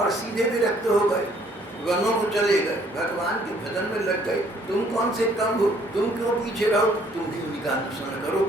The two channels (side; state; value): both; normal; correlation 0.62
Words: सीधे विरक्त हो गए, वनों को चले गए, भगवान के भजन में लग गए। तुम कौन से कम हो, तुम क्यों पीछे रहो, तुम भी उन्हीं का अनुसरण करो,